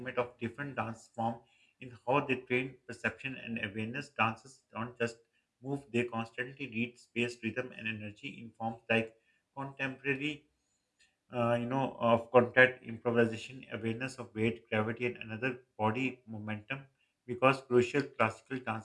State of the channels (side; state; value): both; identical; correlation 1.00